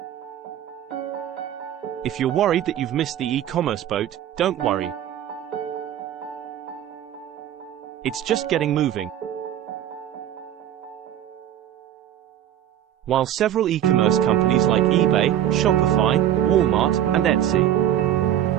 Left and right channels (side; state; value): left; quieter; 11.2 dB